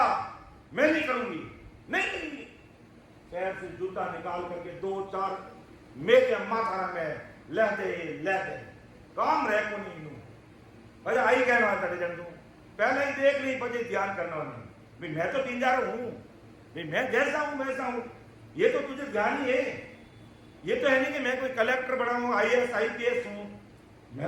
मैं नहीं करूंगी, नहीं करूंगी। शहर से जूता निकाल करके 2-4 मेरे अम्मा थाना में लेते काम रह को नहीं अरे आई कहना जन तू पहले ही देख ली, बजे ध्यान करना नहीं, मैं तो पिंजारा हूं, मैं जैसा हूं वैसा हूं, ये तो तुझे ध्यान ही है। ये तो है नहीं कि मैं कोई कलेक्टर बना हूं, IAS IPS हूं,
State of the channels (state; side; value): identical; both; correlation 1.00